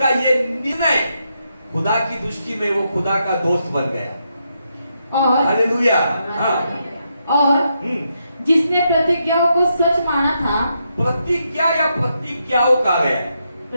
ये निर्णय, खुदा की दृष्टि में वो खुदा का दोस्त बन गया। और हालेलुया। और जिसने प्रतिज्ञाओं को सच माना था। प्रतिज्ञा या प्रतिज्ञाओं का है,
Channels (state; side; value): inverted; both; correlation -0.81